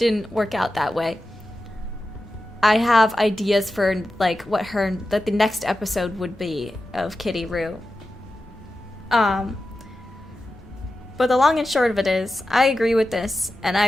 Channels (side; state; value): left; noise; rumble, 24 dB below the sound